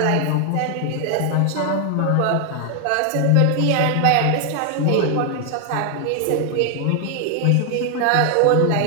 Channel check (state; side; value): different; both; correlation 0.00